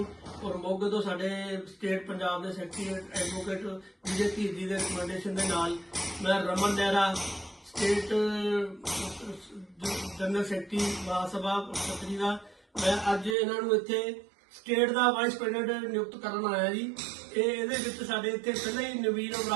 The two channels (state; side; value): drops out; left; at 13.4 s